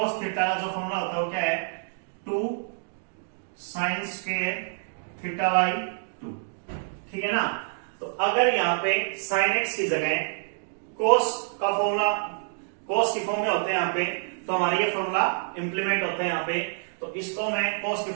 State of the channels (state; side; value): silent; left; digital silence